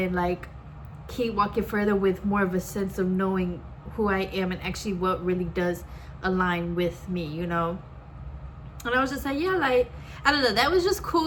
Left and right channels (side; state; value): both; identical; correlation 1.00